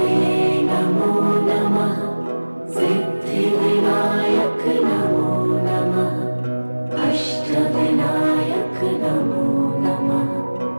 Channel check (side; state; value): both; inverted; correlation -1.00